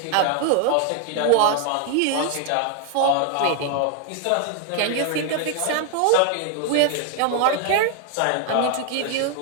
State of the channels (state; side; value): different; both; correlation 0.00